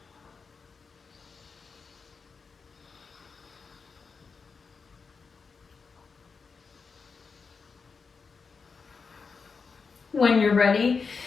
When you're ready,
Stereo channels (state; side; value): quieter; right; 5.1 dB